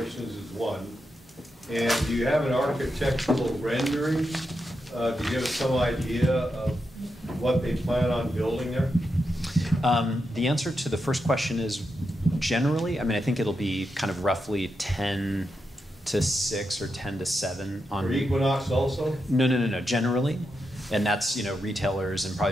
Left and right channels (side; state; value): both; normal; correlation 0.86